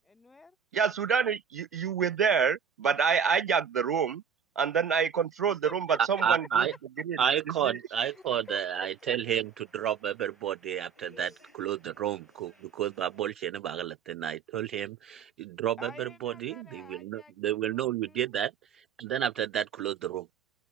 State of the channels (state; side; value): quieter; left; 7.4 dB